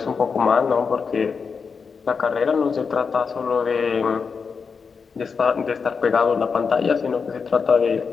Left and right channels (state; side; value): quieter; right; 5.5 dB